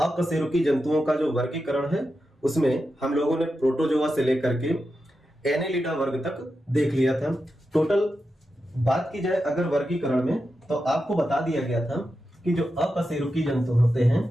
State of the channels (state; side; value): normal; both; correlation 0.89